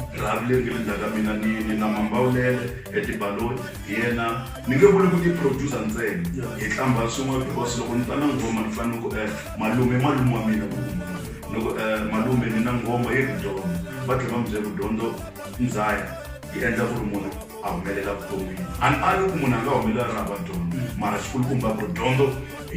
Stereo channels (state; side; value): identical; both; correlation 1.00